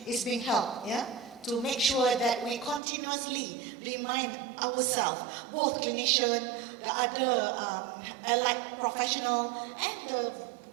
is being held, yeah? To make sure that we continuously remind ourselves, both clinician, the other allied professional, and the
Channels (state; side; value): drops out; left; at 2.8 s